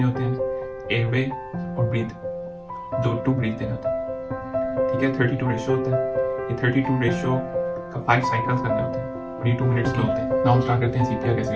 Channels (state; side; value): identical; both; correlation 1.00